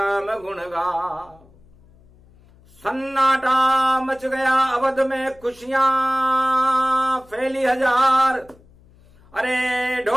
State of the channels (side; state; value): left; noise; hum, 28 dB below the sound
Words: गुण गाओ। सन्नाटा मच गया अवध में, खुशियां फैली हजार। अरे